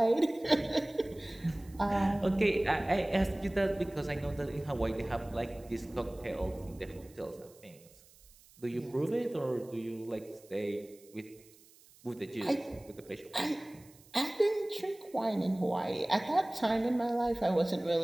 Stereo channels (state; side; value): noise; right; hiss, 26 dB below the sound